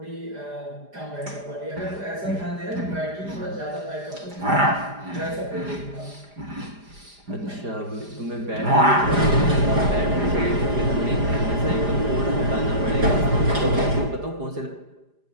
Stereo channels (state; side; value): late; left; 4.9 ms